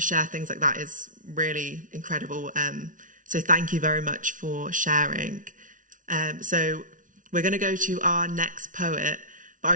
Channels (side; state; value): left; late; 0.38 ms